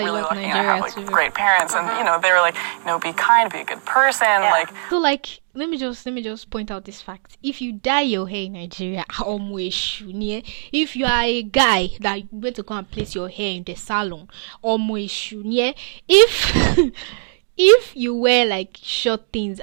a lot in Lucky, Nigeria I have, like, too. great parents, and they were like, be kind, be a good person, like. So like, let me just point out this fact. If you dye your hair in Nigeria, if you are a guy that went to go and place your hair in the salon, if you wear like short things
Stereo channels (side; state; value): left; silent; digital silence